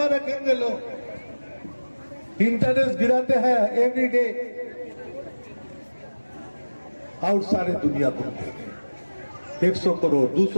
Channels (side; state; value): both; inverted; correlation -1.00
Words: रखेंगे लोग? इंटरेस्ट गिराते हैं एवरी डे, और सारे दुनिया को 100 करोड़,